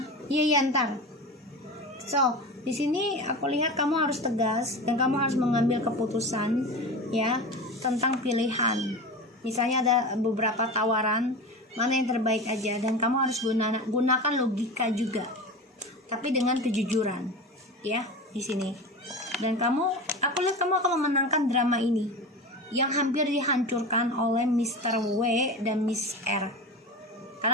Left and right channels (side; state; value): both; normal; correlation 0.29